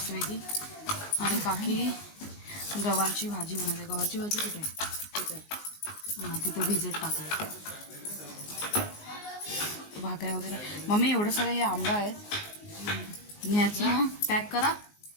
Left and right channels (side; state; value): right; late; 19 ms